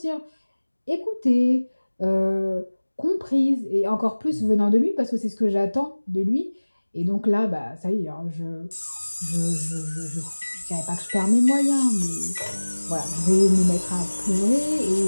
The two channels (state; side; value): inverted; both; correlation -1.00